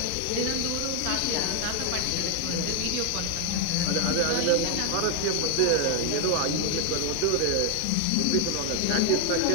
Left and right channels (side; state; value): both; different; correlation 0.01